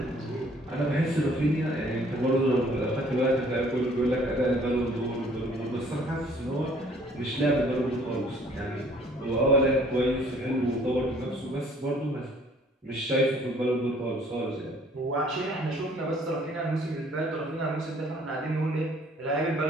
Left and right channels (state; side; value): normal; both; correlation 0.58